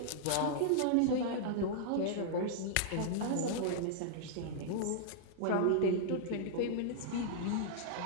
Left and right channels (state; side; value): different; both; correlation -0.02